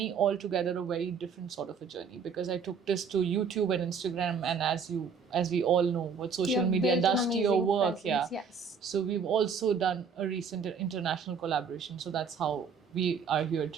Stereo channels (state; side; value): quieter; left; 5.9 dB